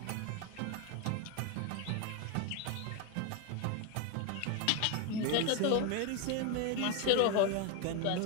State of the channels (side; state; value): both; different; correlation 0.01